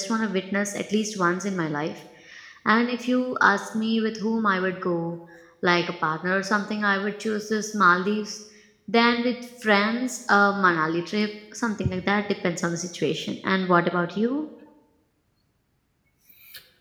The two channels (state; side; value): identical; both; correlation 1.00